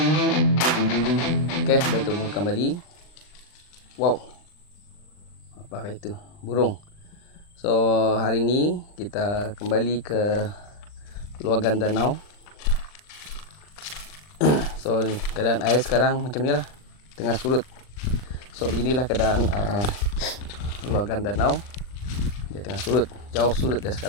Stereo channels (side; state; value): right; late; 39 ms